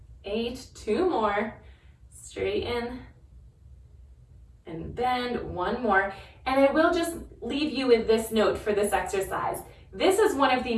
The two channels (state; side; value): identical; both; correlation 1.00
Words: 8, 2 more. Straighten and bend, 1 more. And I will just leave you with this note for this exercise. This is one of the